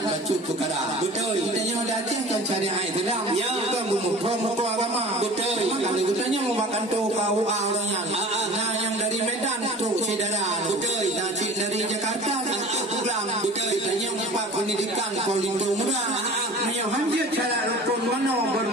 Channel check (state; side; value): normal; both; correlation 0.41